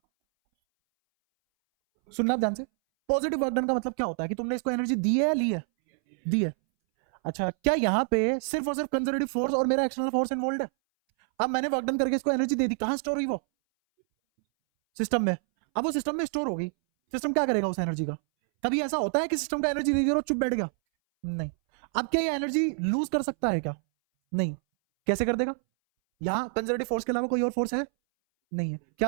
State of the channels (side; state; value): left; silent; 60 dB below the other